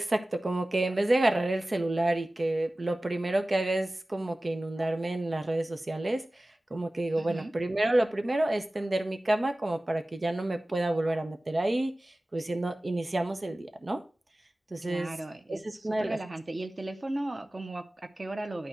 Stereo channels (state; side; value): normal; both; correlation 0.97